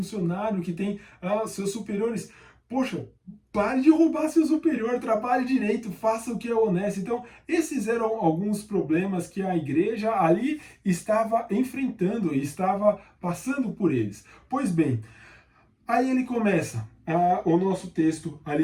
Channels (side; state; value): both; identical; correlation 1.00